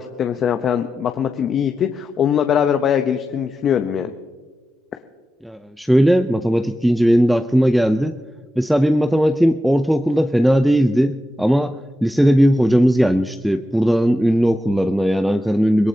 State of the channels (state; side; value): normal; both; correlation 0.91